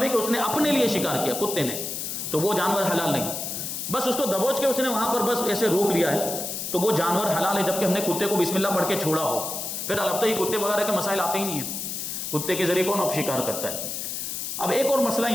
ہے کہ اس نے اپنے لیے شکار کیا کتے نے، تو وہ جانور حلال نہیں. بس اس کو دبوچ کے اس نے وہاں پر بس ایسے روک لیا ہے تو وہ جانور حلال ہے، جبکہ ہم نے کتے کو بسم اللہ پڑھ کے چھوڑا ہو. پھر البتہ یہ کتے وغیرہ کے مسائل آتے ہی نہیں ہیں، کتے کے ذریعے کون اب شکار کرتا ہے. اب ایک اور مسئلہ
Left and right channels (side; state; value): left; noise; hiss, 5 dB below the sound